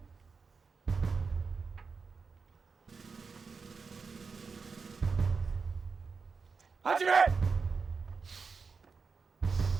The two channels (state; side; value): quieter; left; 5.0 dB